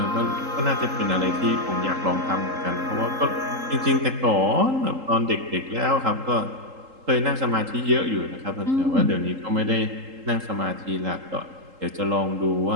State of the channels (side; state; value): left; late; 3.8 ms